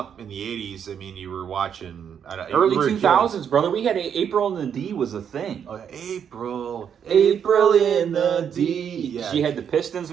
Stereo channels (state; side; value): quieter; left; 8.1 dB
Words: in the 80s, I mean, you were watching... Early 2000s, brother. We had April in the D was a thing. April in the D. Yeah. You had the Pistons,